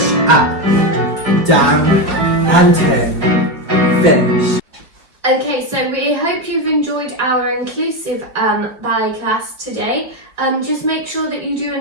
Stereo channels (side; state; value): left; late; 4.9 ms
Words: up, down, and turn. Finish. Okay, so we hope you've enjoyed our inclusive ballet class today. Just make sure that you do a